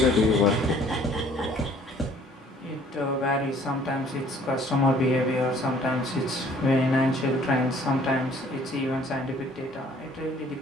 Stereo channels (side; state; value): both; normal; correlation 0.56